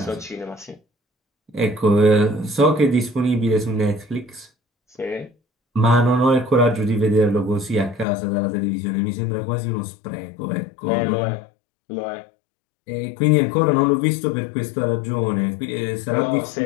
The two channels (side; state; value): right; drops out; at 8.1 s